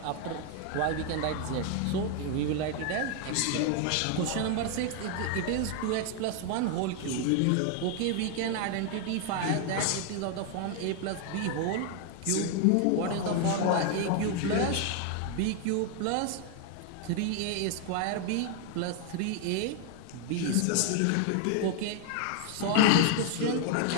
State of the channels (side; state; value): both; different; correlation 0.00